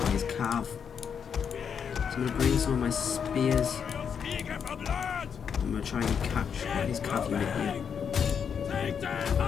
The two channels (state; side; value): quieter; right; 7.1 dB